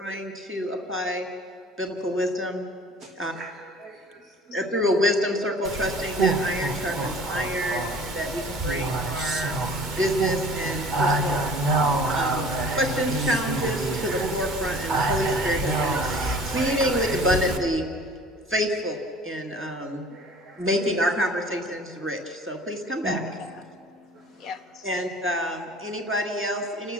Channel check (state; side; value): normal; both; correlation 0.48